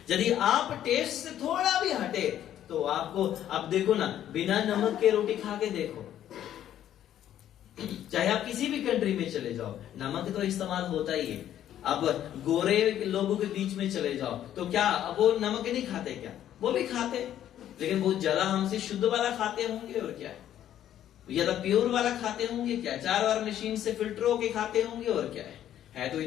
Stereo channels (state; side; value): quieter; right; 11.3 dB